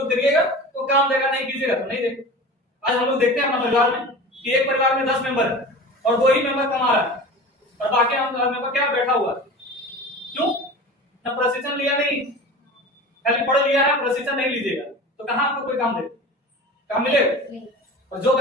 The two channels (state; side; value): normal; both; correlation 0.35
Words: करिएगा तो काम देगा, नहीं कीजिएगा तो नहीं देगा। आज हम लोग देखते हैं हमारे परिवार में कि एक परिवार में 10 मेंबर है और 2 ही मेंबर कमा रहा है और बाकी हम मेंबर क्या बैठा हुआ है। क्यों? ना प्रशिक्षण लिया, नहीं, खाली पढ़ लिया है, प्रशिक्षण नहीं लीजिएगा तो कहां आपको कोई काम देगा? काम मिलेगा? और जो